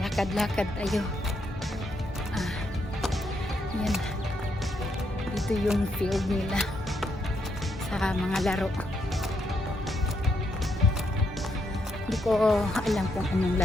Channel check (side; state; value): both; normal; correlation 0.77